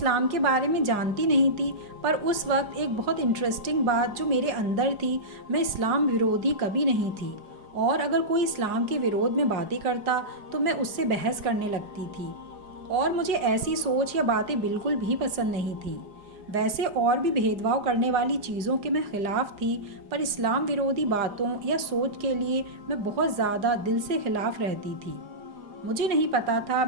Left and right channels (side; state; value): left; late; 4.9 ms